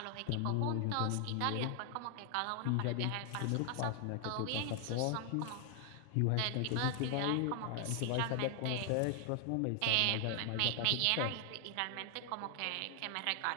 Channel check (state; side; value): different; both; correlation 0.00